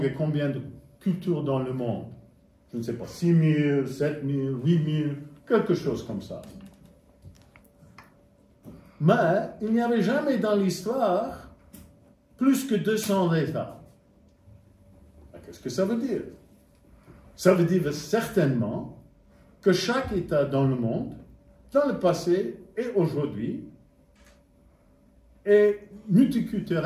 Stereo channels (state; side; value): identical; both; correlation 1.00